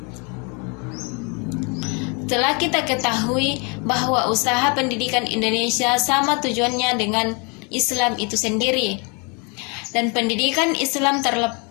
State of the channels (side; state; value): right; quieter; 32.7 dB